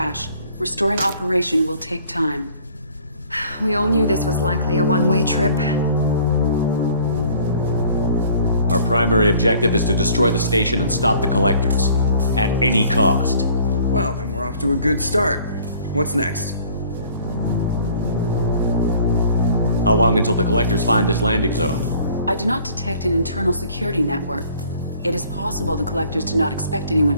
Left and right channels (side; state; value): both; inverted; correlation -0.54